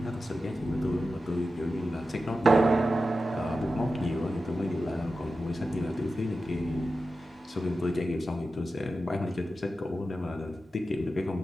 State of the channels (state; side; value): normal; both; correlation 0.92